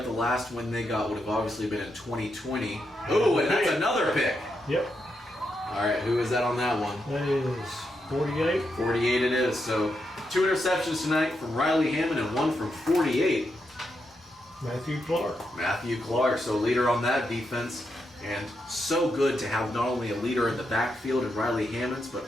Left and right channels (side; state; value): both; normal; correlation 0.83